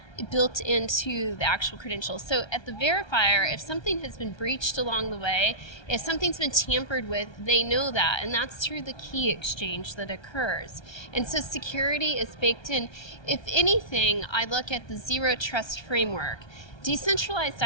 built into the actual credential. So at the verifier, if something has been breached along the way, if something's been tampered with, they know that, and that's through the key exchange that occurs. And so security is baked in. If anything, I look at the zero trust framework. Decentralized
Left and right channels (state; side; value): late; right; 1.3 ms